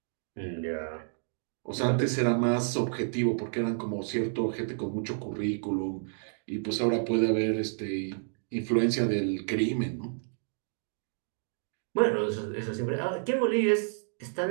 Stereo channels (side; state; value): left; silent; digital silence